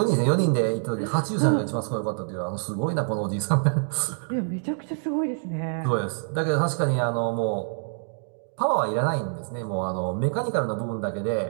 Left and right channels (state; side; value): silent; left; 61 dB below the other